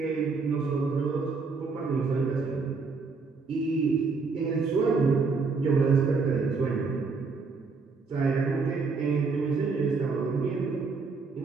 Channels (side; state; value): left; quieter; 4.5 dB